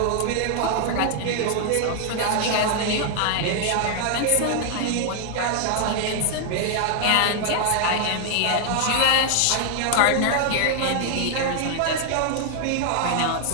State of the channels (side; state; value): both; different; correlation 0.00